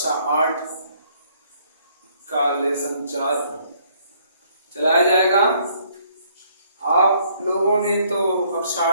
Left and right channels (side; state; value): both; inverted; correlation -0.65